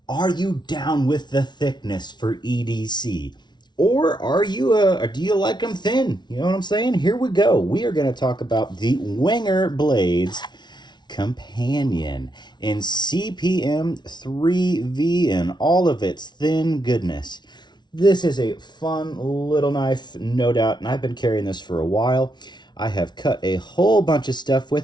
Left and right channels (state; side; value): late; right; 0.21 ms